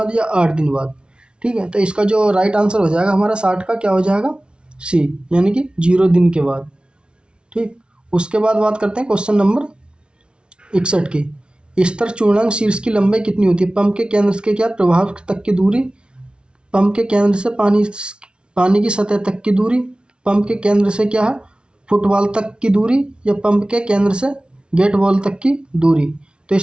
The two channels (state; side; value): late; left; 0.057 ms